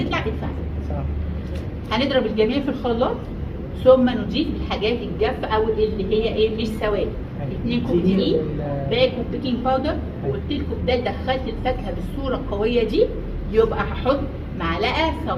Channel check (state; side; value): identical; both; correlation 1.00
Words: ادفع. صح. هنضرب الجميع في الخلاط ثم نضيف الحاجات الجافه او اللي هي ايه مش سوائل. 2 كوب دقيق، باكو بيكنج باودر، وقلت لكم ده دخلت الفاكهه بالصوره القويه دي، يبقى هحط معلقه